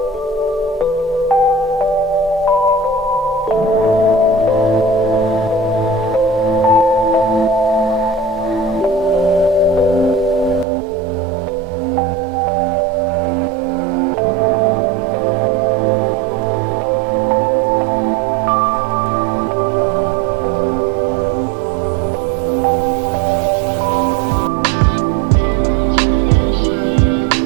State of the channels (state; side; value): drops out; left; at 10.7 s